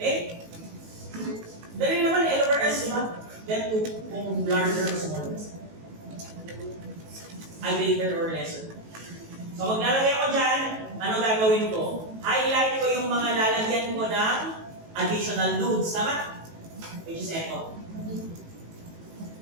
Dali naman, L over S, diba? Then 2, kung larger or smaller. Greater or lesser. So, maglalagay ako dyan, ano gagawin ko? Highlight ko yung mga lalagyan ko ng additional nodes, tama? Which is echo.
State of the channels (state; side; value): late; left; 18 ms